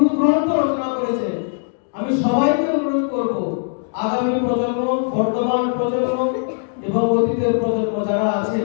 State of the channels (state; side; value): silent; right; digital silence